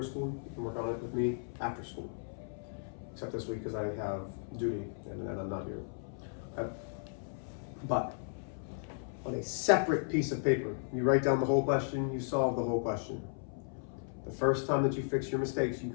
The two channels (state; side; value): silent; right; 54 dB below the other